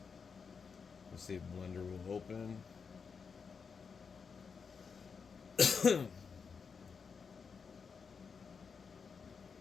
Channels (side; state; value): right; quieter; 5.7 dB